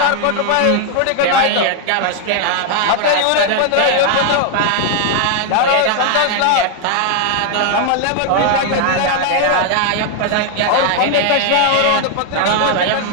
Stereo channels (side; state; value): both; different; correlation 0.00